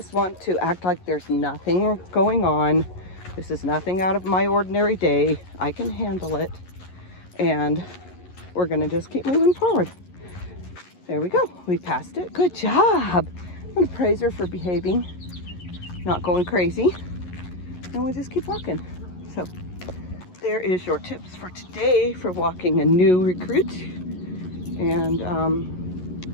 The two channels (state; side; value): late; right; 11 ms